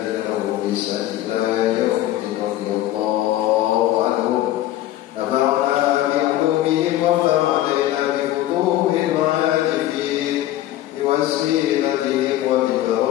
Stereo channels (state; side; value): quieter; right; 14.0 dB